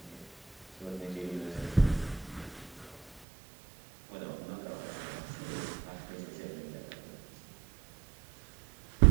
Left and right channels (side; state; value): left; drops out; at 3.2 s